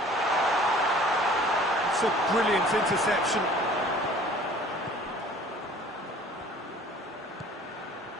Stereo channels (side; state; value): both; normal; correlation 0.50